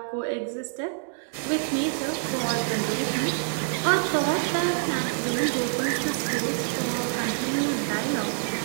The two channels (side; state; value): left; silent; 61 dB below the other